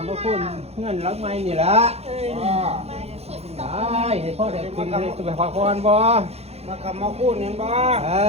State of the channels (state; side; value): late; left; 0.30 ms